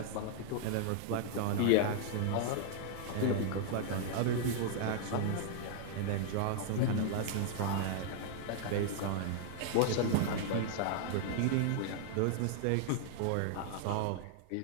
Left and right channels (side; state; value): both; different; correlation -0.01